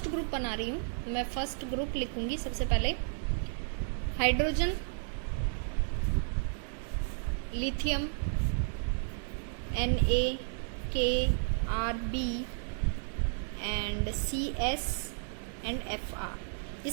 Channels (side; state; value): left; silent; 56 dB below the other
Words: ग्रुप बना रही हूँ। मैं फर्स्ट ग्रुप लिखूंगी सबसे पहले, hydrogen, lithium, Na, K, Rb and Cs and Fr, ये